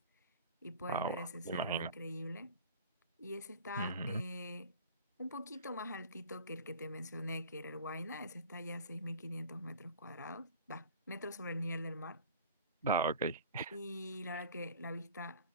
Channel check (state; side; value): inverted; both; correlation -0.43